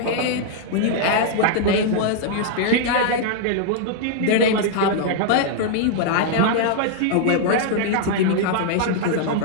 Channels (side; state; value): both; different; correlation -0.01